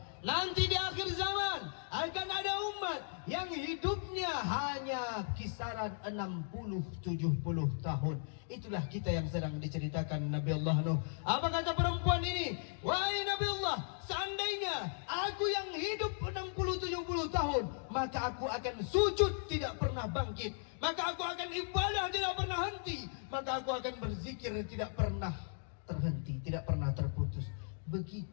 nanti di akhir zaman akan ada umat yang hidupnya hanya kisaran 60-70 tahun. Itulah kita yang sedang diceritakan Nabi Allah Nuh. Apa kata perempuan ini? Wahai Nabi Allah, seandainya aku yang hidup 60-70 tahun, maka aku akan sujud tidak pernah bangkit, maka aku akan ibadah tidak pernah henti, maka aku akan berzikir tidak pernah terhenti, tidak pernah terputus.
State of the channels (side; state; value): right; silent; digital silence